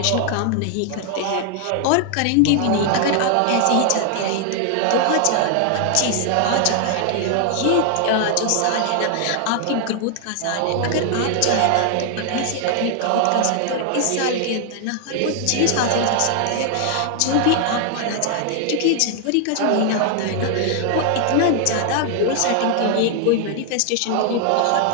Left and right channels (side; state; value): both; different; correlation 0.00